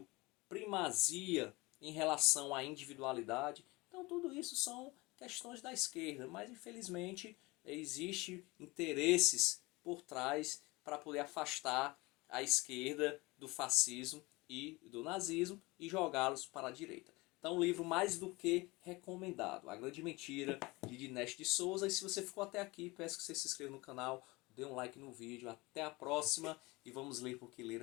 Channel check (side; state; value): right; quieter; 23.3 dB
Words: primazia em relação à individualidade. Então, tudo isso são questões da esquerda, mas infelizmente existe interesses por trás para poder afastar a esquerda do fascismo e do nazismo e jogá-los para a direita. Então, um livro mais do que recomendado. A Grande Mentira, de Dinesh de Souza. E se você ficou até aqui, peço que você se inscreva no canal, dê um like no vídeo. Até a próxima e vamos ler porque